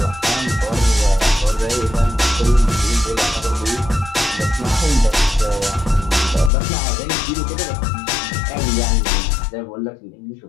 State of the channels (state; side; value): drops out; right; at 6.5 s